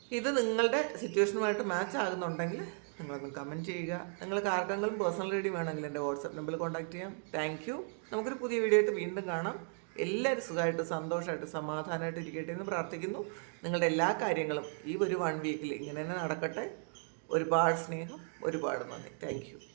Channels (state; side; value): silent; left; 54 dB below the other